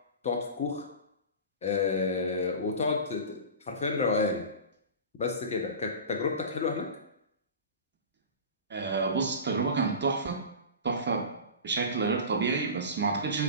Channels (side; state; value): both; inverted; correlation -0.32